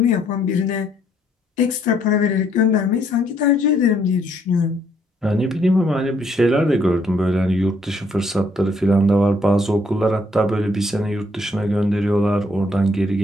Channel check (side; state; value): both; normal; correlation 0.68